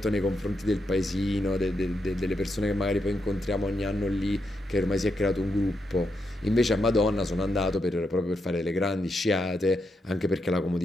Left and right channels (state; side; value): normal; both; correlation 0.83